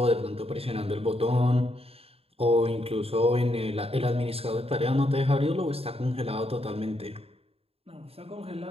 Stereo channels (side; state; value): left; late; 0.28 ms